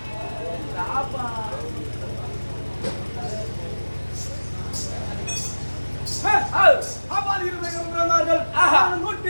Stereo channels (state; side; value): inverted; both; correlation -1.00